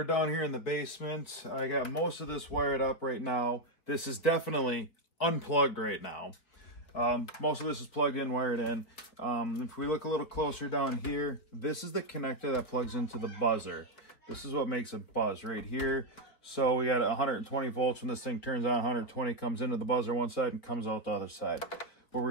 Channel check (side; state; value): right; late; 4.4 ms